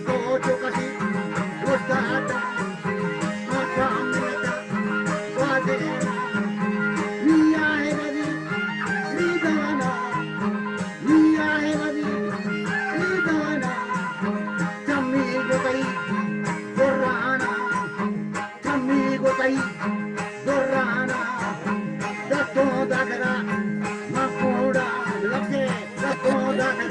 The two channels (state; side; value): identical; both; correlation 1.00